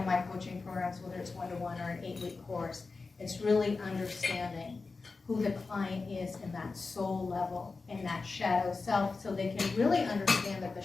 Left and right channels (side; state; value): right; quieter; 4.1 dB